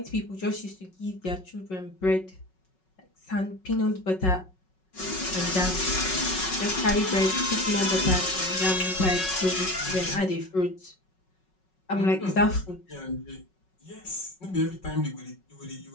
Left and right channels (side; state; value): right; late; 5.4 ms